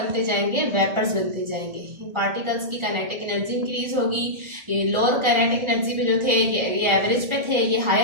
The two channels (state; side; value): late; left; 1.4 ms